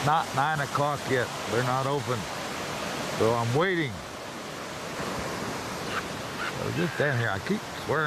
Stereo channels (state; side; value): identical; both; correlation 1.00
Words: not 9 o'clock yet. They're not open. So I'm waiting. So just down here, I keep